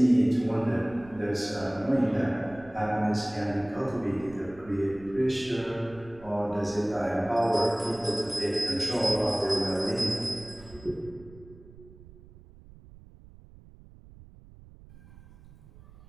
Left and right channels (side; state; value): right; noise; rumble, 21 dB below the sound